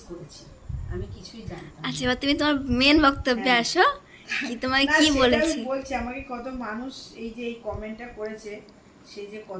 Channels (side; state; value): both; identical; correlation 1.00